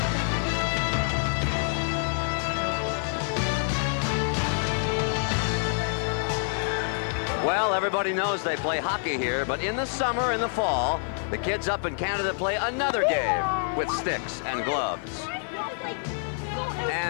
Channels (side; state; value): right; silent; 60 dB below the other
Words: Well, everybody knows they play hockey here, but in the summer and the fall, the kids up in Canada play another game with sticks and gloves.